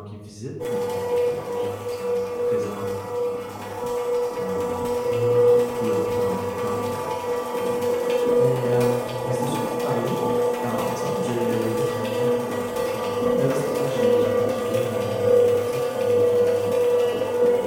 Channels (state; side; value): identical; both; correlation 1.00